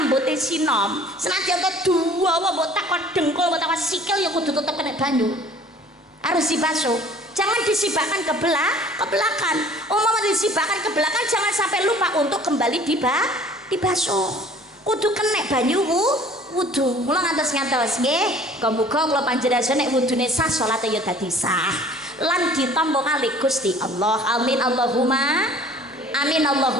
sinom, senajan to dawa mbok takon dengkul mbok takon sikil ya kudu tetep kena banyu. Harus dibasuh. Jangan disibakkan ke belakang. Umpama disibakkan ke belakang jangan sampai lupa untuk kembali dibasuh. Kudu kena banyu wudu. Mula ngantos nggih. Muga kula panjenengan nek wudune sah salate ya dadi sah. Lan ditampa kali Gusti Allah. Amin Allahumma. Amin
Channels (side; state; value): both; normal; correlation 0.51